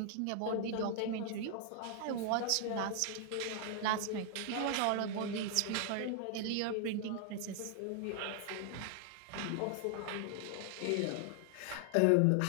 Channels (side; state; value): both; different; correlation 0.00